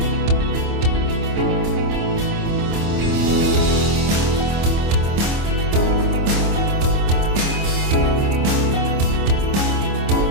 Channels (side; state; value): left; late; 25 ms